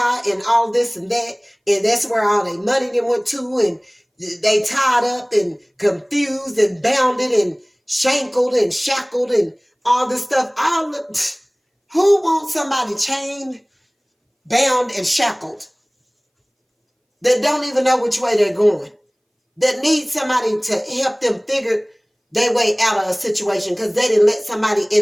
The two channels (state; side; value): identical; both; correlation 1.00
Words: and all this and that, and that's where all their money then went to, and they tied up and confused and bounded and shankled and shackled and all this stuff. Who wants somebody chained, bound, and shackled that don't even know which way they're going, that need somebody to help them figure their way out of a situation because they didn't let somebody